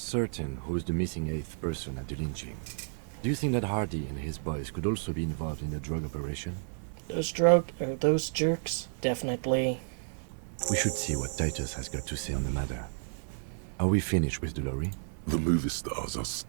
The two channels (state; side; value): silent; left; 57 dB below the other